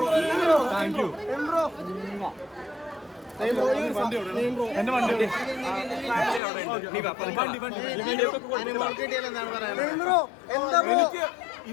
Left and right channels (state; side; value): drops out; right; at 6.4 s